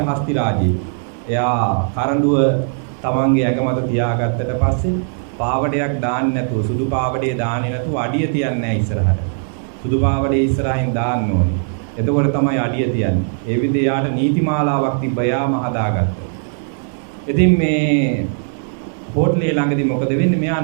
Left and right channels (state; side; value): silent; left; digital silence